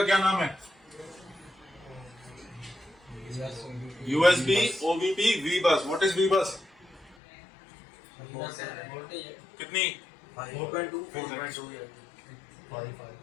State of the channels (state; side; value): drops out; right; at 7.2 s